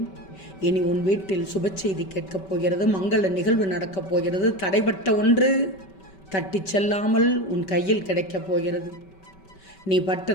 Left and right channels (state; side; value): late; right; 5.2 ms